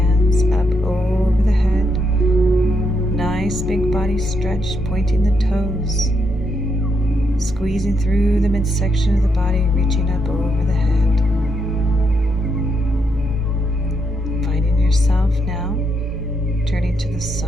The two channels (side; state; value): both; normal; correlation 0.79